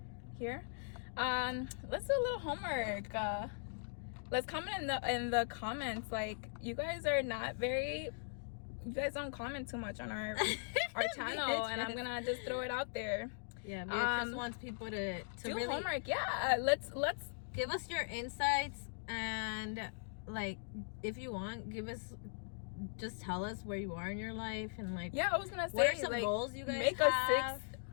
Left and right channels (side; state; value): right; silent; digital silence